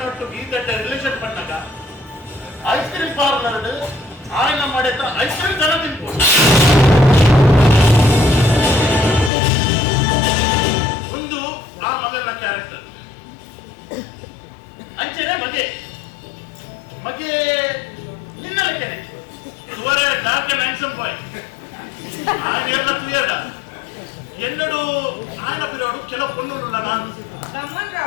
ಒಟ್ಟು ಗೀತಟ್ಟೆ ರಿಲೇಷನ್ ಪಣ್ಣಗ ಐಸ್ ಕ್ರೀಮ್ ಪಾರ್ಲರ್ ಆಯ್ನ ಮಾಡಿದ ಐಸ್ ಕ್ರೀಮ್ ಜನ ತಿನ್ಬೋದು ಒಂದು ಆ ಮಗನ ಕ್ಯಾರೆಕ್ಟರ್ ಅಂಚೆನೆ ಮಗೆ ನಿನ್ನಲಕ್ಕೇನೆ ಇವರೇ ಡಾರ್ಕ್ ಅಂಡ್ ಹ್ಯಾಂಡ್ಸಮ್ ಬಾಯ್ ఆయన ಎಲ್ಲ ಕ್ಲಿಯರ್ ಎನ್ನಡು ఆయన పిరోడు ಕೆಲವು పొన్నులు ನಾನು ಗಮನ್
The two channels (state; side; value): drops out; right; at 9.3 s